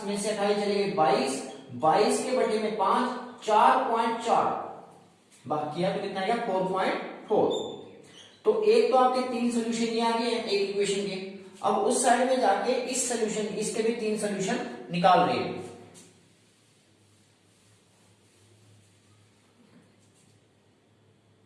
में से 28 चले गए 22, 22 के बटे में 5 4.4, बाकी है तो कितना आएगा 4.4। तो एक तो आपके 3 सोल्यूशन ये आ गए हैं एक इक्वेशन के। अब उस साइड में जाके इस सोल्यूशन, इसके भी 3 सोल्यूशन निकाल रहे हैं।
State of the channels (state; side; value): identical; both; correlation 1.00